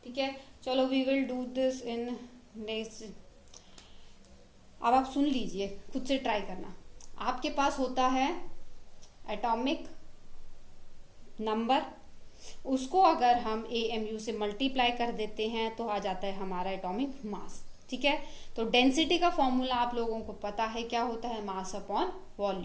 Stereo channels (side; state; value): both; identical; correlation 1.00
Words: ठीक है, चलो we will do this in next. अब आप सुन लीजिए, खुद से ट्राई करना। आपके पास होता है एटॉमिक नंबर, उसको अगर हम AMU से मल्टीप्लाई कर देते हैं तो आ जाता है हमारा एटॉमिक मास। ठीक है, तो डेंसिटी का फॉर्मूला आप लोगों को पता है क्या होता है, मास अपॉन